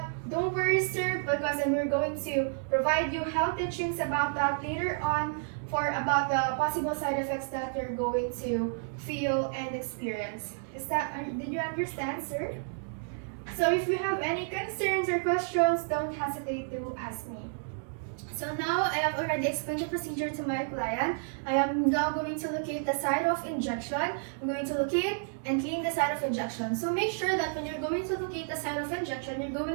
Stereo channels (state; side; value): silent; left; digital silence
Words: don't worry, sir, because we're going to provide you health teachings about that later on about the possible side effects that you're going to feel and experience. Did you understand, sir? So if you have any concerns or questions, don't hesitate to ask me. So now I have already explained the procedure to my client. I am now going to locate the site of injection. I'm going to locate and clean the site of injection. So make sure that when you're going to locate the site of injection, you're